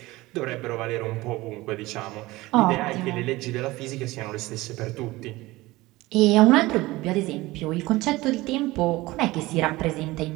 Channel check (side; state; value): left; quieter; 19.6 dB